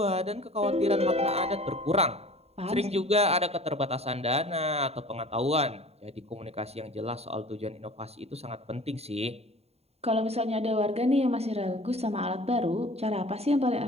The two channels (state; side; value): late; left; 0.30 ms